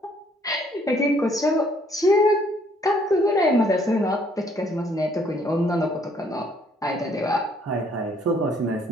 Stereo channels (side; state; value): both; normal; correlation 0.64